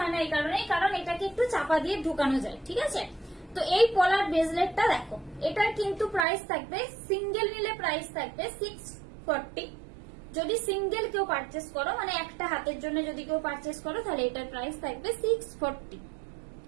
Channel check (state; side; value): drops out; left; at 6.2 s